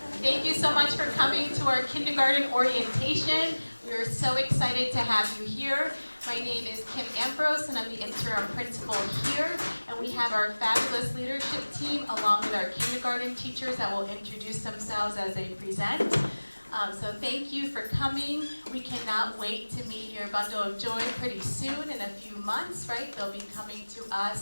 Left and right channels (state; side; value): inverted; both; correlation -1.00